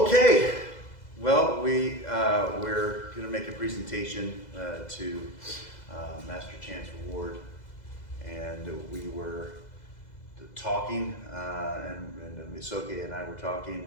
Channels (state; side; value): late; right; 2.0 ms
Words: well, we're going to make a presentation to Master Chance Ward, and we were talking, and Soke and I were talking